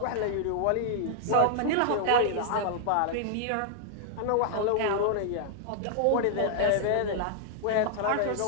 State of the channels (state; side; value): different; both; correlation -0.01